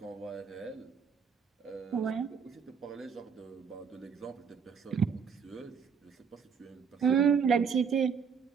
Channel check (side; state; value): left; quieter; 6.4 dB